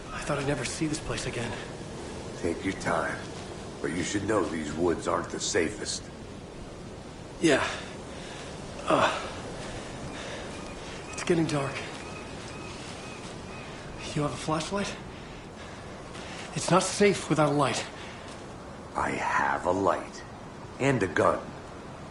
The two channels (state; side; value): identical; both; correlation 1.00